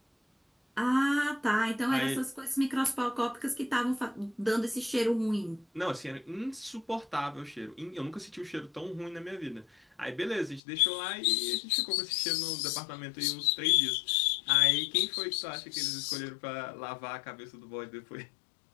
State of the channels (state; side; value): drops out; right; at 10.6 s